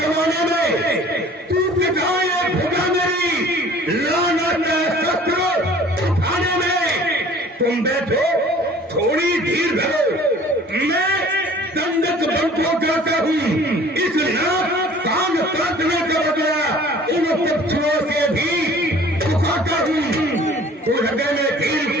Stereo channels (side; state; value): both; normal; correlation 0.49